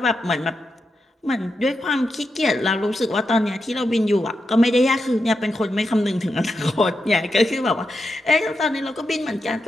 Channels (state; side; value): normal; both; correlation 0.87